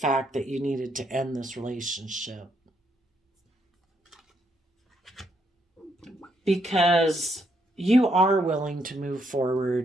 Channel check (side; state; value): both; normal; correlation 0.75